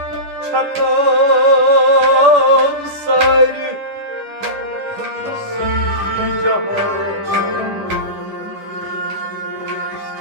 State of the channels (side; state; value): left; late; 10 ms